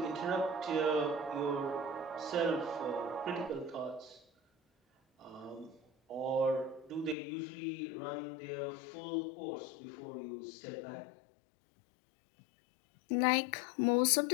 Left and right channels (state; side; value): drops out; right; at 7.2 s